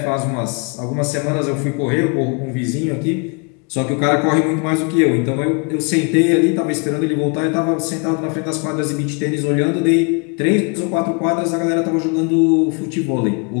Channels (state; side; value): quieter; right; 34.4 dB